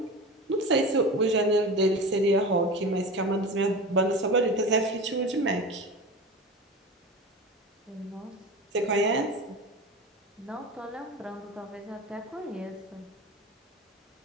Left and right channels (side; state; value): both; normal; correlation 0.30